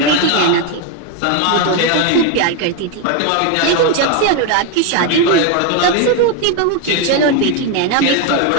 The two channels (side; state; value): both; different; correlation 0.02